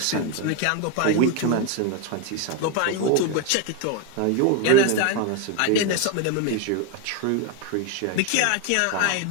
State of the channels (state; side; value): different; both; correlation 0.02